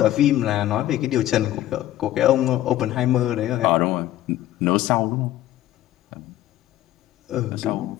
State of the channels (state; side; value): quieter; right; 13.8 dB